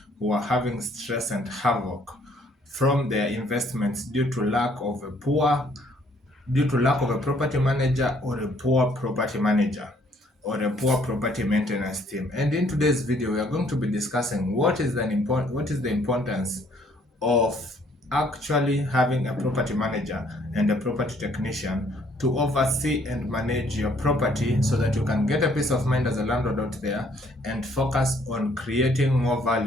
who are having stress and havoc from their investments due to lack of a property manager or a poor property manager or a poor property maintenance team. And in today's video, we are going to be discussing what is the importance of actually having a property manager and a property technician to oversee and manage your property so that you can get a peace of mind as a landlord out there and focus on creating more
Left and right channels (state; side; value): normal; both; correlation 0.64